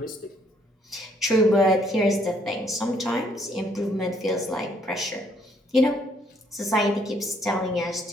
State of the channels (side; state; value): both; normal; correlation 0.67